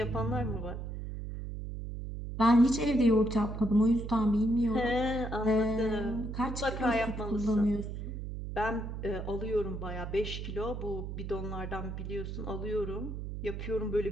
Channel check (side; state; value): right; noise; hum, 6 dB below the sound